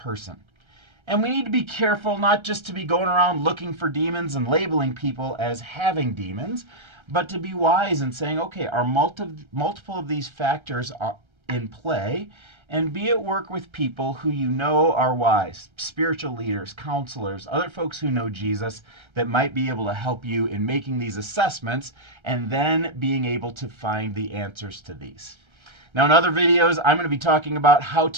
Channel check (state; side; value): late; left; 1.3 ms